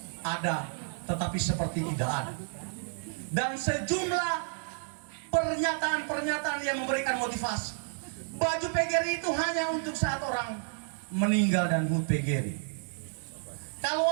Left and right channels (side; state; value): left; silent; 57 dB below the other